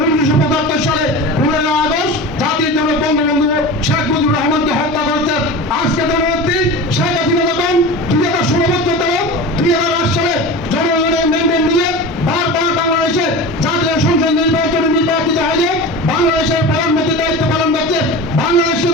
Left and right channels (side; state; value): both; normal; correlation 0.31